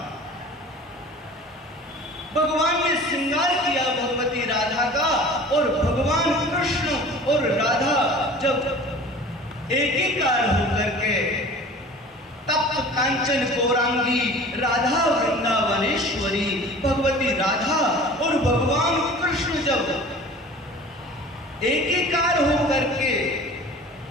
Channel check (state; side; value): normal; both; correlation 0.42